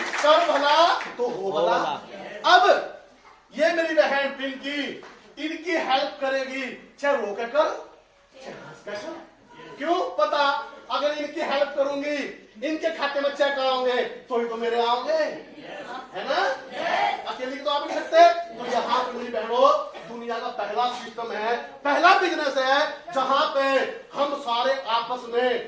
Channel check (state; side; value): identical; both; correlation 1.00